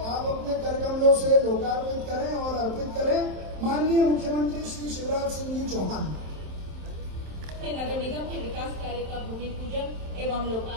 आप अपने कर कमलों से लोकार्पित करें और अर्पित करें। माननीय मुख्यमंत्री श्री शिवराज सिंह जी चौहान के नगर निगम के विकास कार्य का भूमि पूजन एवं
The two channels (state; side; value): late; left; 27 ms